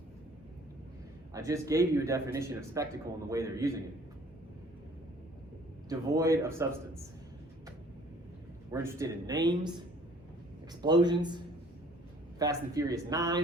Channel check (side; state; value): both; normal; correlation 0.55